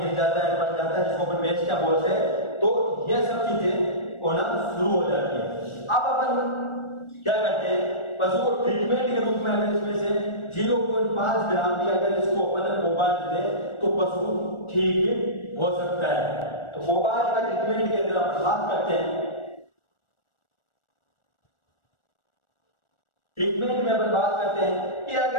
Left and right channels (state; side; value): late; right; 1.4 ms